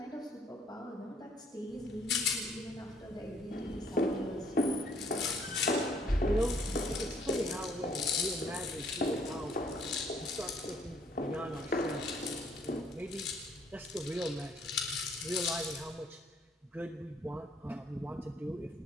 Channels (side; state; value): both; normal; correlation 0.64